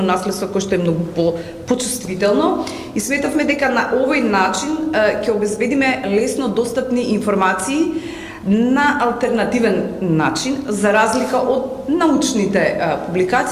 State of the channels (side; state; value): both; identical; correlation 1.00